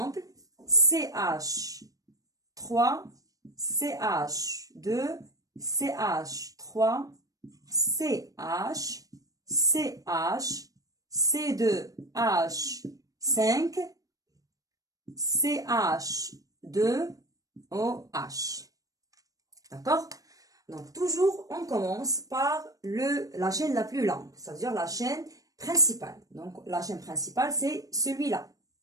CH3, CH2, CH3, CH, CH, C2H5, CH2OH. D'accord? Donc, toujours, on commence par la chaîne la plus longue, c'est-à-dire la chaîne principale. Donc, la chaîne principale, c'est celui-là.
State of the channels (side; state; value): left; late; 0.17 ms